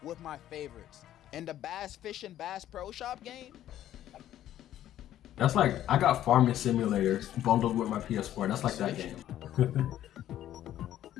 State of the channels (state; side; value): quieter; right; 12.2 dB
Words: with my favorites. And the Bass Fish and Bass Pro Shop game, That's like, I got Farming Simulator bundled with my PS4. That's like that game.